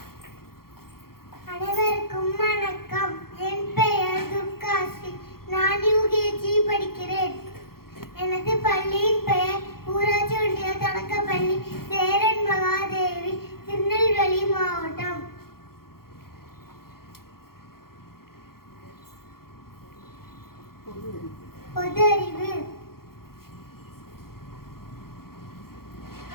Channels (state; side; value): late; right; 0.93 ms